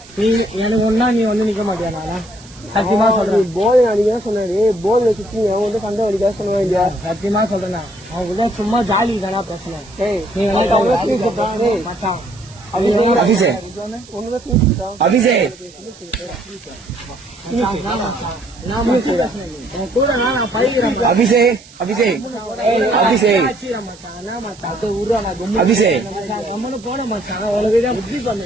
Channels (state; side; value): noise; right; hiss, 22 dB below the sound